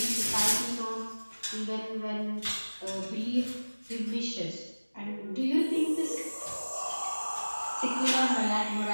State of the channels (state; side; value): inverted; both; correlation -1.00